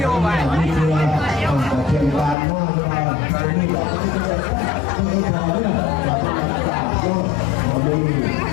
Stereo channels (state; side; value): drops out; right; at 2.4 s